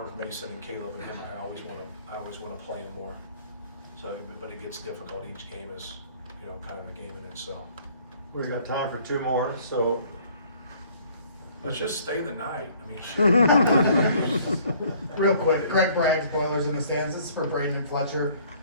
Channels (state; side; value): inverted; both; correlation -0.57